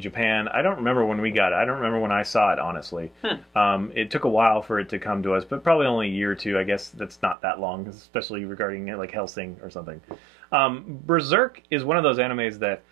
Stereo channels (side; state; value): left; drops out; at 7.4 s